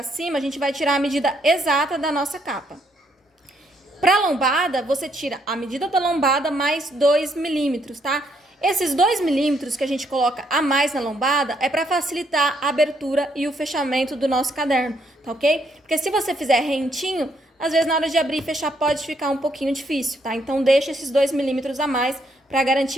cima, a gente vai tirar a medida exata da nossa capa. Pra lombada, você tira a medida da lombada mais 2 milímetros, tá? Esses 2 milímetros que a gente coloca a mais na lombada é para facilitar a abertura e o fechamento do nosso caderno, tá ok? Porque se você fizer rentinho, às vezes na hora de abrir e fechar pode ficar um pouquinho difícil, tá? Então deixa esses 2 milímetros a mais para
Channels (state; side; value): normal; both; correlation 0.72